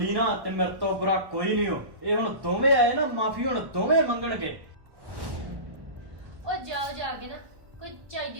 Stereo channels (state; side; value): late; left; 1.1 ms